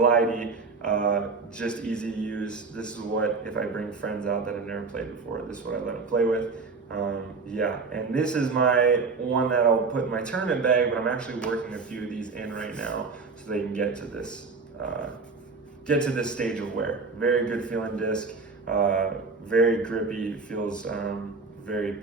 just easy to use. This is what, if I bring friends out that have never played before, this is what I let them play with. Yeah, and this is my one that I'll put in my tournament bag, but I'm actually working a few of these in right now so they can get to this stage of wear. Very good feeling disc, very grippy, feels very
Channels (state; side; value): quieter; left; 4.4 dB